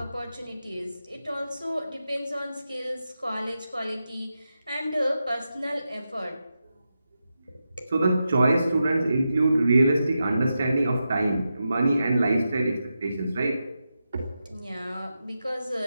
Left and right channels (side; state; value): both; inverted; correlation -0.89